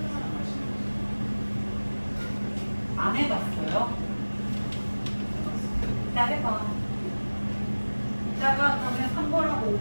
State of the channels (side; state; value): both; inverted; correlation -1.00